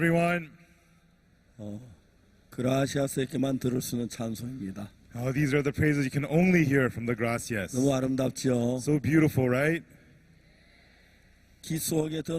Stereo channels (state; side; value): identical; both; correlation 1.00